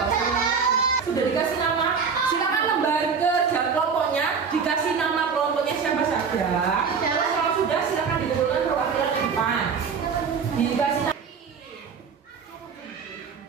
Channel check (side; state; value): left; quieter; 5.9 dB